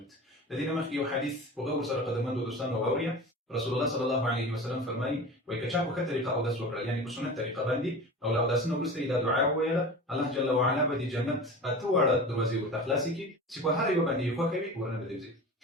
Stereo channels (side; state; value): both; normal; correlation 0.33